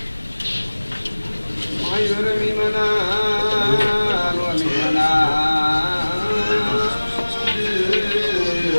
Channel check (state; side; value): inverted; both; correlation -1.00